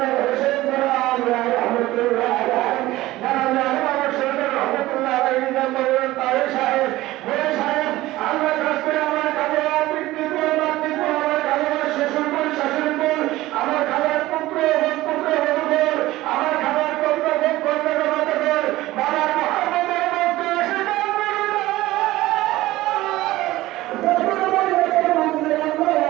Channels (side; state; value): left; quieter; 17.2 dB